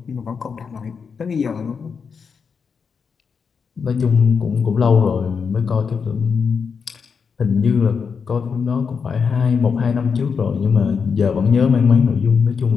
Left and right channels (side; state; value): right; quieter; 5.9 dB